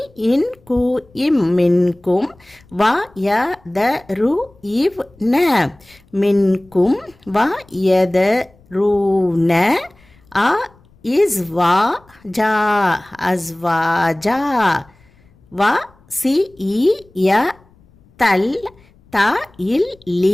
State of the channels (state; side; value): noise; left; rumble, 30 dB below the sound